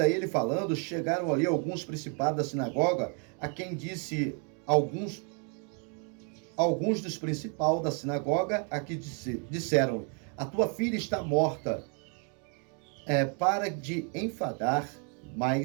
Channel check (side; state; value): left; quieter; 38.9 dB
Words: ele falando, chegaram ali alguns principados da sinagoga, a quem disse alguns dos principais da sinagoga, a que disseram, a tua filha está morta, para de enfadar